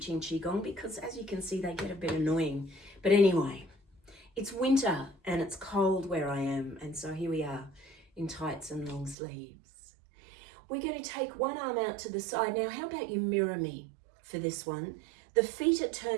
Qigong because, as you can see, they get a bit annoying. But anyway, it's winter and it's cold where I am, and so here we are in tights and long sleeves. We're going to take one arm out to the side. Now, how about you mirror me for this one? The feet are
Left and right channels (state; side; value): drops out; left; at 9.2 s